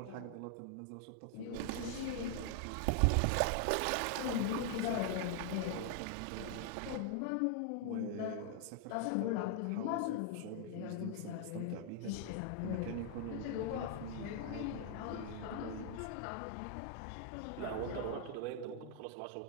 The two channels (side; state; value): both; different; correlation 0.00